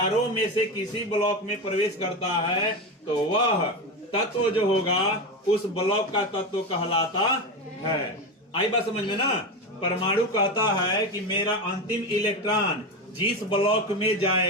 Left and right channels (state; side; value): normal; both; correlation 0.18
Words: में से किसी ब्लॉक में प्रवेश करता है तो वह तत्व जो होगा उस ब्लॉक का तत्व कहलाता है। आई बात समझ में ना। परमाणु कहता है कि मेरा अंतिम इलेक्ट्रॉन जिस ब्लॉक में